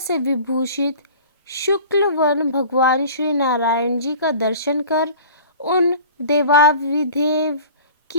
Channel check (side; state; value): both; inverted; correlation -0.43